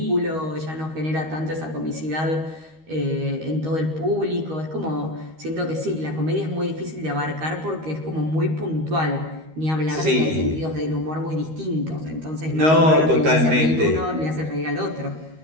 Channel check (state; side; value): late; left; 13 ms